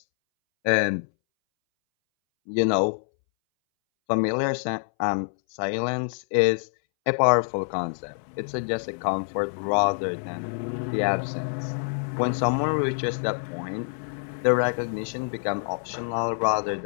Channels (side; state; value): right; silent; 61 dB below the other